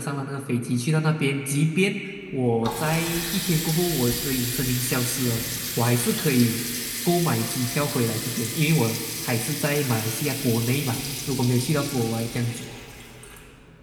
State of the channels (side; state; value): both; identical; correlation 1.00